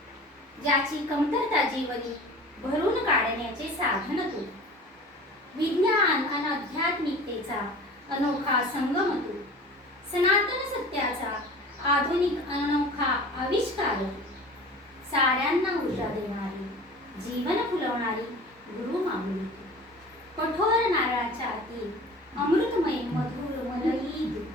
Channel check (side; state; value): both; normal; correlation 0.40